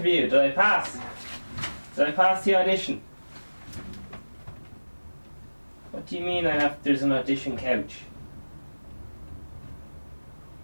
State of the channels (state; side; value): inverted; both; correlation -1.00